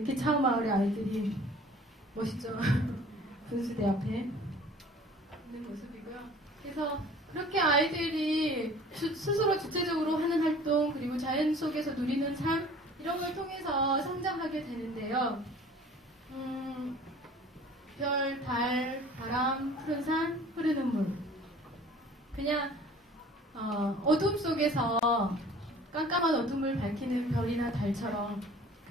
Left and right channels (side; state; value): both; normal; correlation 0.48